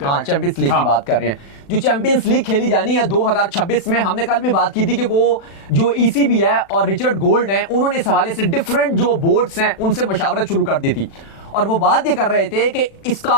हाँ चैंपियंस लीग की बात कर रहे हैं, जो चैंपियंस लीग खेली जानी है 2026 में। हमने कल भी बात की थी कि वो जो ECB है और रिचर्ड गोल्ड है, उन्होंने इस हवाले से डिफरेंट जो बोर्ड्स हैं उनसे मशावरत शुरू कर दी थी, और वो बात ये कर रहे थे कि इसका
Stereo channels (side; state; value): right; late; 36 ms